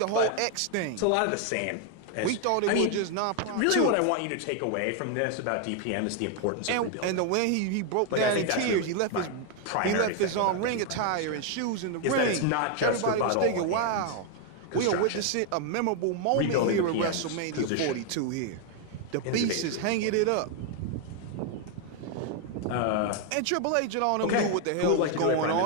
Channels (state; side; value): different; both; correlation 0.01